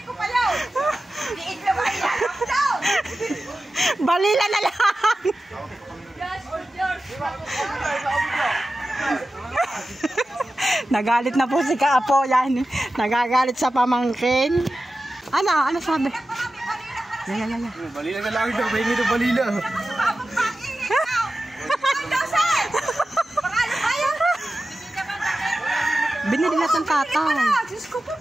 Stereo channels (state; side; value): normal; both; correlation 0.94